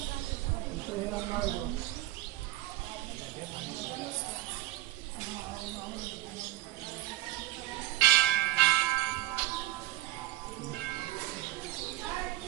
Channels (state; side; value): quieter; left; 15.5 dB